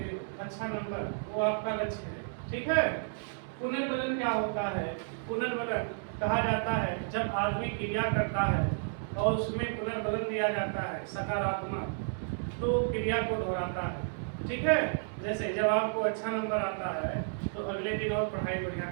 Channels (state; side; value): silent; left; digital silence